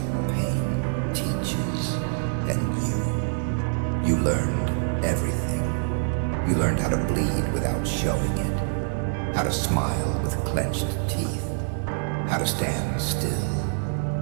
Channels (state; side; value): silent; left; 61 dB below the other